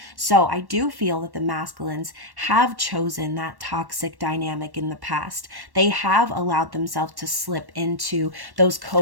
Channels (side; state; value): left; late; 1.1 ms